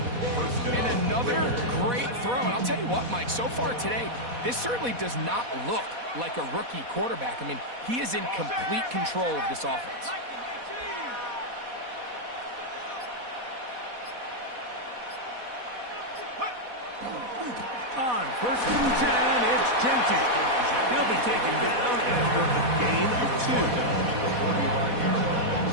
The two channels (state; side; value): late; left; 4.1 ms